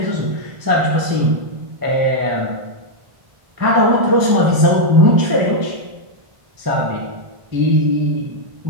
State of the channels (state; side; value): late; left; 1.0 ms